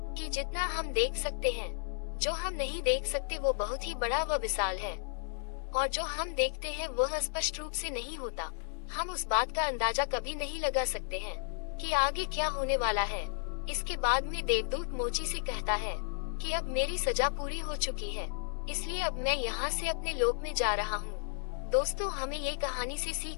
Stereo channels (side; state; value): right; silent; digital silence